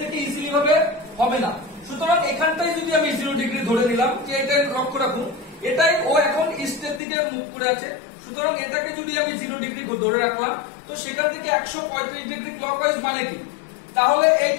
ইজিলি ভাবে হবে না। সুতরাং এখানটাই যদি আমি 0 ডিগ্রি ধরে নিলাম, যে এটা লক্ষ্য রাখুন, এটাই ও এখন ইস্টের দিকে মুখ করে আছে। সুতরাং এটাকে যদি আমি 0 ডিগ্রি ধরে রাখলাম, তো সেখান থেকে 135 ডিগ্রি ক্লকওয়াইজ মানে কি, তাহলে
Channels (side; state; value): right; drops out; at 7.0 s